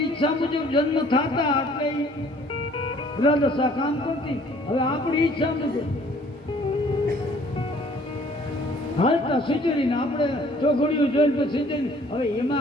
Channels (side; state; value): both; normal; correlation 0.57